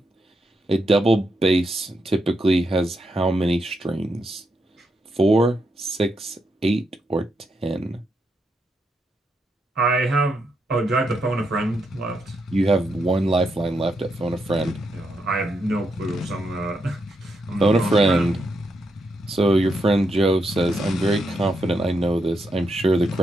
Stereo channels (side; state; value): both; normal; correlation 0.82